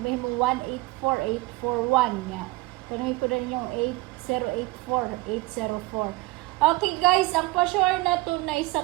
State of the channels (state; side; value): quieter; left; 21.5 dB